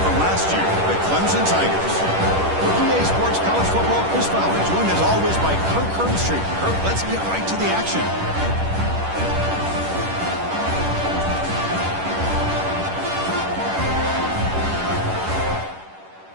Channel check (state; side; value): late; left; 10 ms